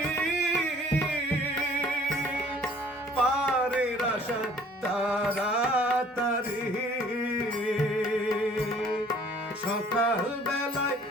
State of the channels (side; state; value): both; normal; correlation 0.55